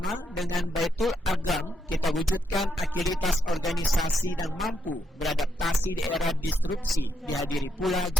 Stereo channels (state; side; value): normal; both; correlation 0.79